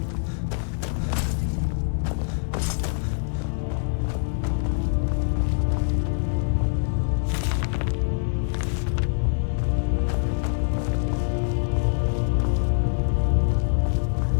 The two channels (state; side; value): silent; right; digital silence